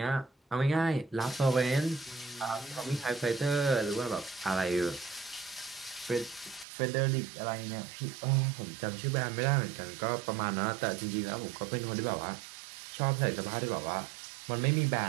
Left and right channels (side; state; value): left; drops out; at 6.7 s